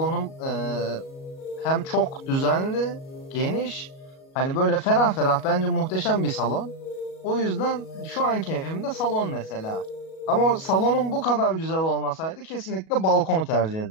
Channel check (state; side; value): late; right; 37 ms